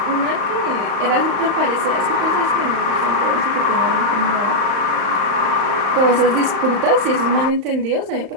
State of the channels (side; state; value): left; late; 35 ms